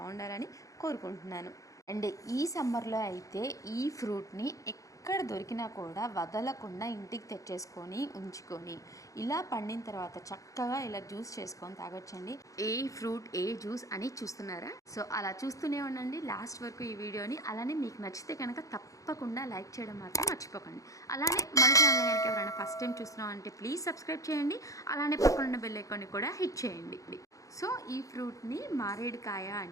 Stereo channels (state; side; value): late; right; 0.16 ms